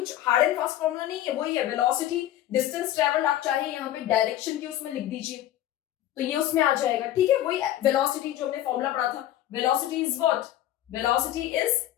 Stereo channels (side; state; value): right; quieter; 12.8 dB